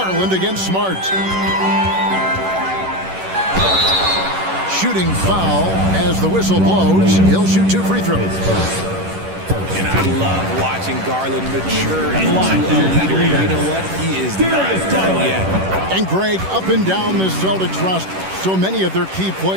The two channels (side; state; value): left; late; 11 ms